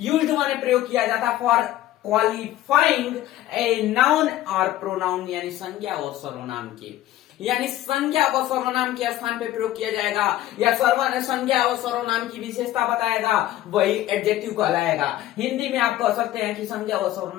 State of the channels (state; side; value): quieter; right; 14.3 dB